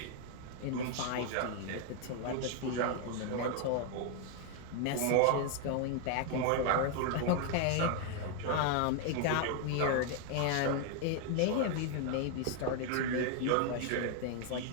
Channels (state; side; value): different; both; correlation 0.00